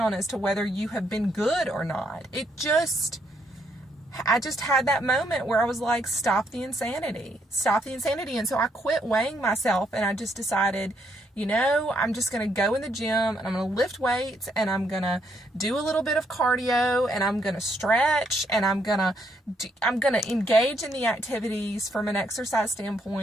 as to whether you have been good or not. I just had that moment where I was like, stop the insanity. And so I quit weighing myself and I just decided, I'm just going to go in the gym and I'm going to lift weights and I'm going to do a little bit of cardio and I'm going to stretch and I'm going to engage in the activities from an exercise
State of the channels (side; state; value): both; normal; correlation 0.74